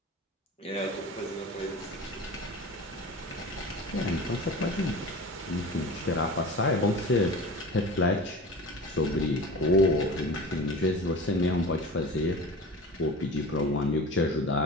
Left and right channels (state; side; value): normal; both; correlation 0.35